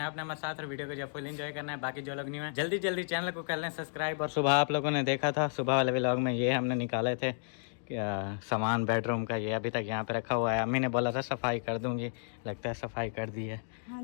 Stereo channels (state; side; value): silent; right; digital silence